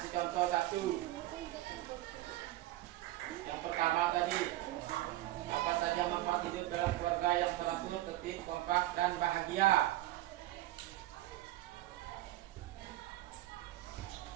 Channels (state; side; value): quieter; left; 16.1 dB